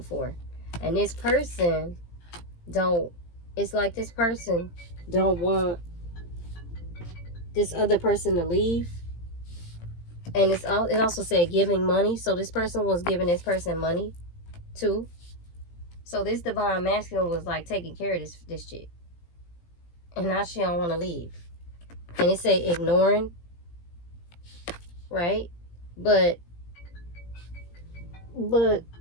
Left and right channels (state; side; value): late; right; 17 ms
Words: And this person it's like this person don't want this other person to leave. And it also said giving money. So this person was giving this person money too. So this divine masculine was like taking care of this chick. And now she don't want to leave. And it say ignoring, right? But the